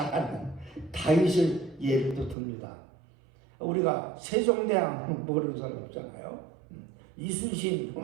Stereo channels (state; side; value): drops out; left; at 2.4 s